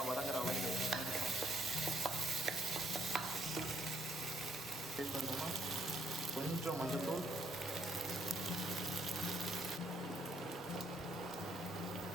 வதங்குற அளவுக்கு டேஸ்ட் பண்ணோம்னா கொஞ்சம் மஞ்சள்தூள்,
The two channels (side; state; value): both; normal; correlation 0.68